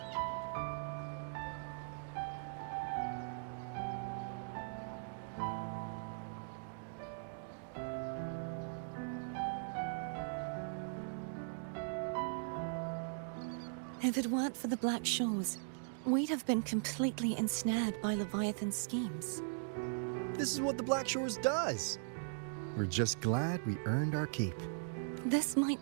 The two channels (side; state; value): left; silent; digital silence